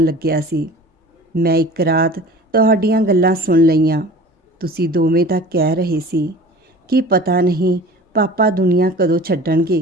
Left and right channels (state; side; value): normal; both; correlation 0.41